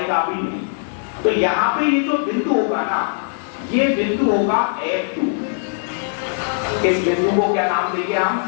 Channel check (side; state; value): right; silent; digital silence